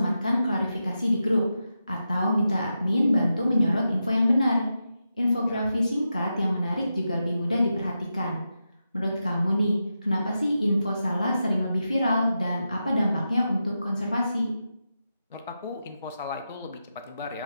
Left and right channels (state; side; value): inverted; both; correlation -0.89